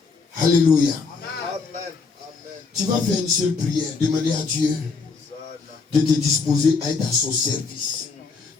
Alléluia. Amen. Tu vas faire une seule prière. Demander à Dieu de te disposer à être à son service.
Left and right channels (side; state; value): right; quieter; 4.7 dB